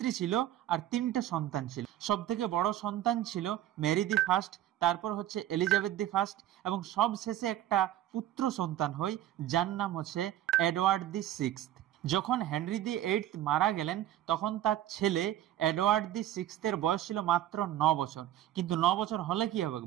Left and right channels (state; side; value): quieter; left; 12.8 dB